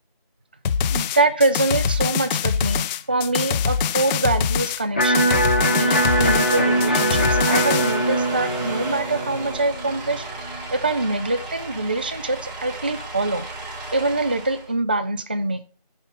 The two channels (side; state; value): both; inverted; correlation -0.50